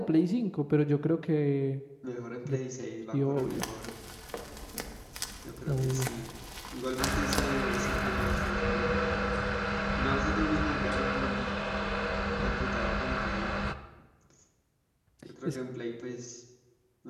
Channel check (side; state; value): both; identical; correlation 1.00